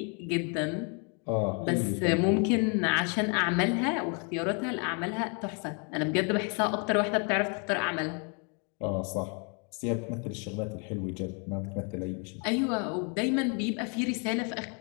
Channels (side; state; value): right; quieter; 37.0 dB